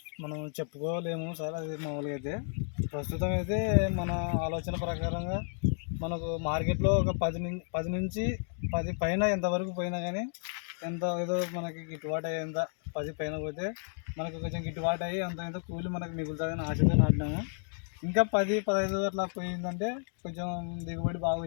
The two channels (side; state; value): right; silent; 56 dB below the other